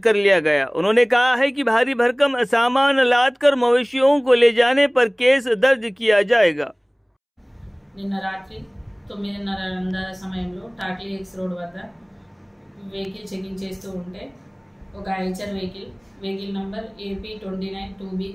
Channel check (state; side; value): identical; both; correlation 1.00